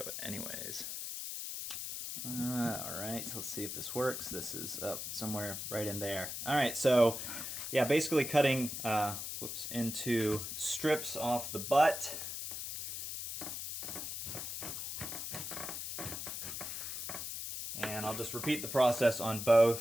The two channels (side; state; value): left; noise; hiss, 5 dB below the sound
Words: it anyways. All right, so let's see if this works. This is up somewhere right in there. All right, so yeah, basically cutting into strips off the butt. And I'll just repeat the process on